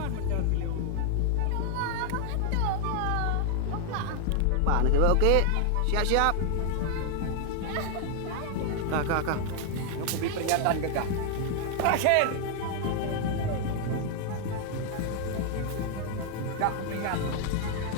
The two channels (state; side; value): different; both; correlation 0.00